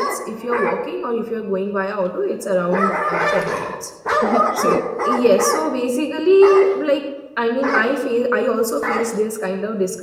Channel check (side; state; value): both; identical; correlation 1.00